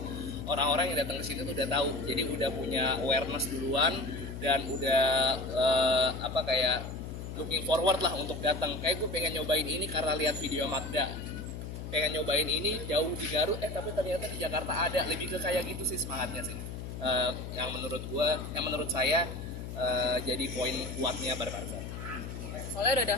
orang-orang yang datang ke sini tuh udah tahu. Jadi udah punya awareness duluan dan udah kayak looking forward lah untuk datang. Kayak gue pengen nyobain ini karena lihat video Magda. Pengen nyobain ini jauh di Garut, tapi ternyata di Jakarta ada. Lebih ke kayak gitu sih semangatnya sih. Yang menurut saya jadi poin kuatnya Barbazar. Soalnya udah ada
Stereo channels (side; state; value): left; noise; hum, 8 dB below the sound